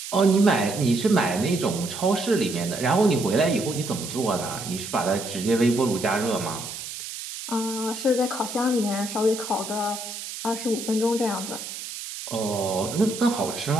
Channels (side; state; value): right; noise; hiss, 9 dB below the sound